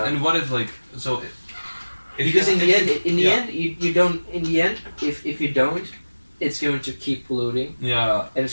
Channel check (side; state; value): both; inverted; correlation -1.00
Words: what if because in the end, you don't. In the end, if you don't, it's going to keep polluting. Yeah. And